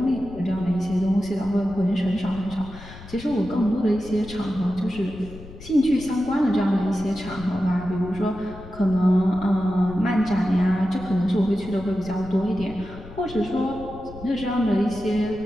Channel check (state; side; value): noise; left; rumble, 16 dB below the sound